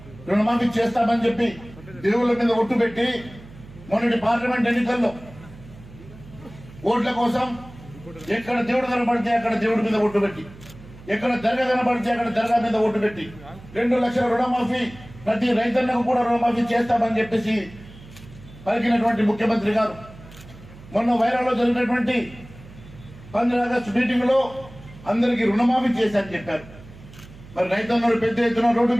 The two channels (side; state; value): right; noise; hum, 19 dB below the sound